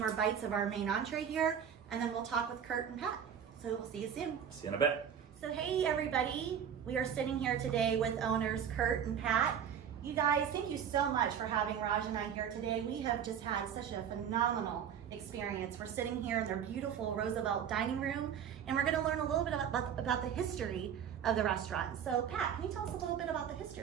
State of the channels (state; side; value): quieter; left; 8.5 dB